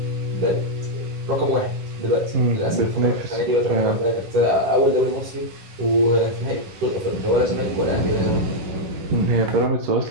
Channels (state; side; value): late; left; 11 ms